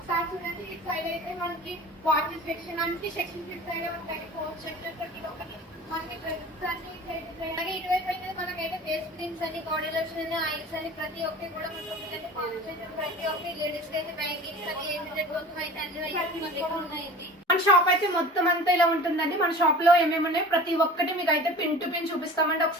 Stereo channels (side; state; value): both; normal; correlation 0.40